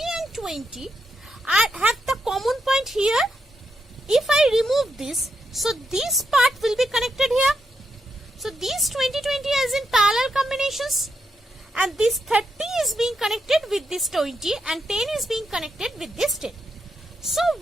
20 have the common point here. If I remove this, so this part will be connected here. So these 20 is in parallel combinations, and this 30 is being connected with this 20 and 10 is being connected with this 10. So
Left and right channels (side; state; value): both; normal; correlation 0.83